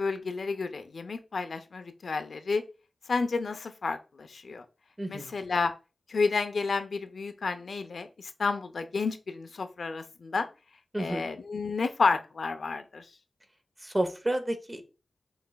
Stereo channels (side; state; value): right; quieter; 3.2 dB